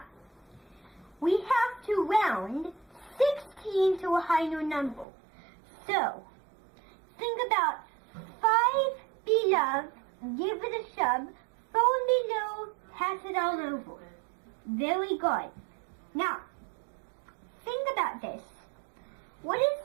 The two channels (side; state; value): left; drops out; at 5.1 s